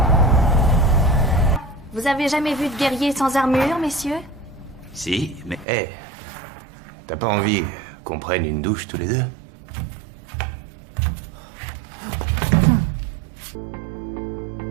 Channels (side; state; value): left; drops out; at 5.7 s